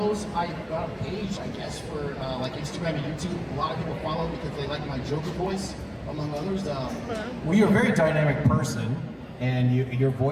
I got a page, I guess, for like Instagram and YouTube. A lot of people follow because they like my Joker voice, among others. Well, you're a very dynamic person, and your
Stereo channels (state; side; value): identical; both; correlation 1.00